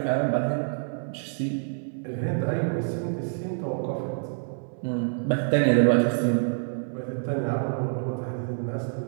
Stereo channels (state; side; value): silent; left; 60 dB below the other